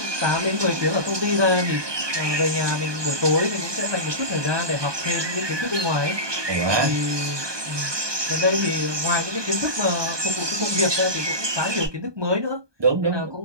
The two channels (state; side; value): late; left; 1.2 ms